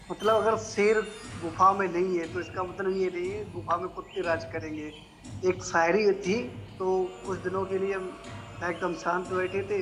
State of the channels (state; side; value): identical; both; correlation 1.00